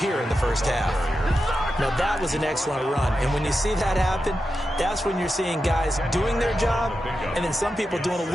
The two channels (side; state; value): both; normal; correlation 0.90